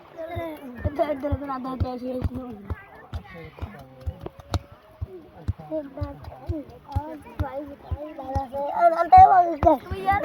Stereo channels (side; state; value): both; identical; correlation 1.00